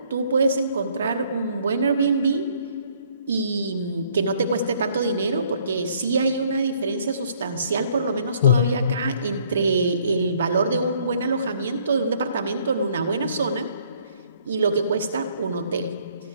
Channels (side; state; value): both; inverted; correlation -0.63